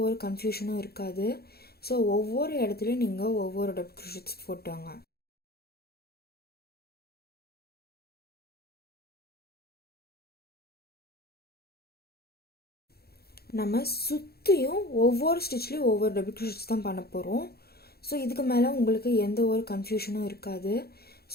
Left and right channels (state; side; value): late; right; 0.46 ms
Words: ஒரு கன்ஃபியூஷனும் இருக்காது. ஸோ ஒவ்வொரு இடத்துலையும் நீங்கள் ஒவ்வொரு டபுள் க்ரோஷெட்ஸ் போட்டுவாங்க. நம்ம சுற்றியும் ஒவ்வொரு ஸ்டிச்லேயும் ஒவ்வொரு டபுள் க்ரோஷெட்ஸ் தான் பண்ண போகிறோம். ஸோ இதுக்கு மேலே உங்களுக்கு எந்த ஒரு கன்ஃபியூஷனும் இருக்காது.